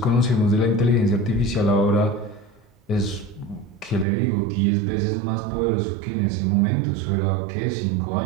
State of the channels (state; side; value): drops out; left; at 4.0 s